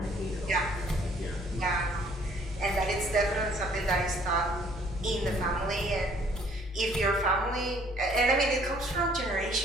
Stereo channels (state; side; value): normal; both; correlation 0.60